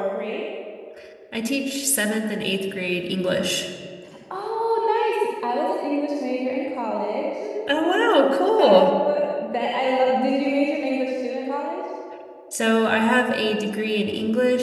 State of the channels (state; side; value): identical; both; correlation 1.00